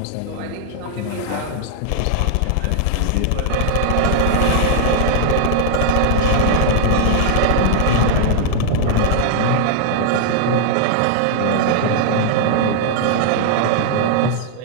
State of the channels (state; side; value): different; both; correlation 0.00